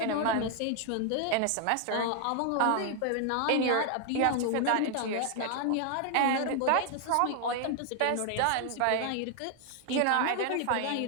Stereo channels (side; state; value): both; different; correlation 0.00